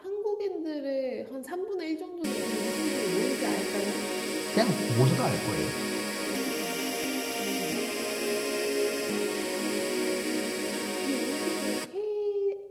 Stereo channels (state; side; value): identical; both; correlation 1.00